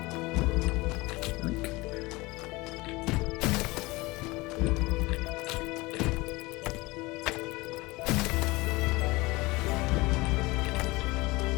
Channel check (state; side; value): quieter; right; 22.5 dB